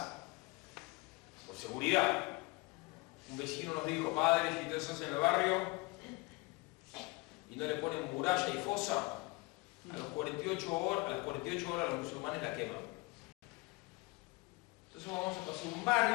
por seguridad. Un vecino nos dijo, padre, si ustedes hacen el barrio y no le ponen muralla y fosa, a las 48 horas los musulmanes la queman. Entonces vamos a pasar un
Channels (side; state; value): right; quieter; 25.3 dB